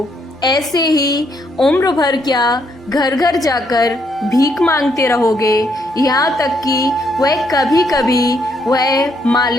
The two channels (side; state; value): both; normal; correlation 0.73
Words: ऐसे ही उम्र भर क्या घर घर जाकर भीख मांगते रहोगे, यहाँ तक कि वह कभी कभी वह